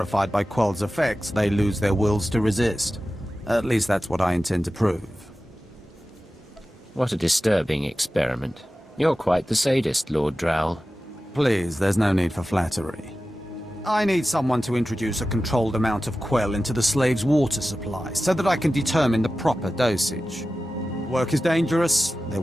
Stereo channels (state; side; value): normal; both; correlation 0.94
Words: by Quell's effects, they lose their wills to resist. At least that's what I intend to prove. What a disturbing experiment. You're quite the sadist, Lord Drow. Please, there's no need for flattery. I need someone to introduce a controlled amount of Quell into the slaves' water supply, so that I can determine the proper dosage. Work is dangerous, there